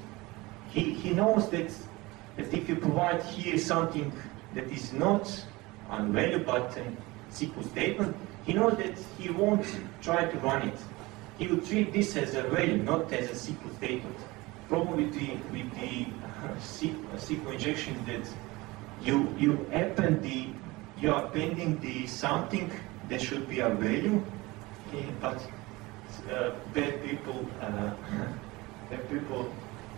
He knows that if you provide here something that is not a value but a SQL statement, he knows that he won't try to run it. He will treat this as a value, not as a SQL statement. Problem with the SQL injection is that you are appending the something that should be a value, but bad people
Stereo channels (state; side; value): quieter; left; 21.9 dB